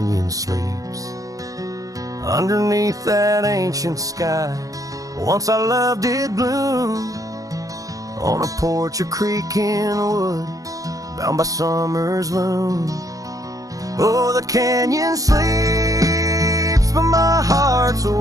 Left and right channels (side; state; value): left; late; 0.17 ms